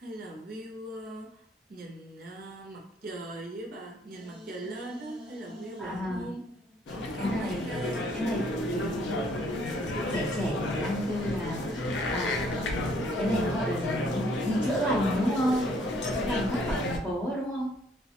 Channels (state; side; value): normal; both; correlation 0.64